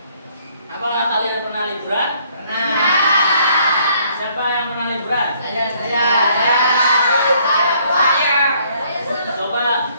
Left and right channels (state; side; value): inverted; both; correlation -0.64